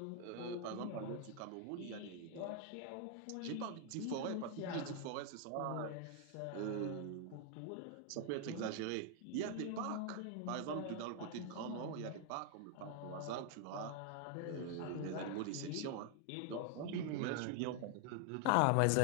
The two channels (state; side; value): different; both; correlation 0.00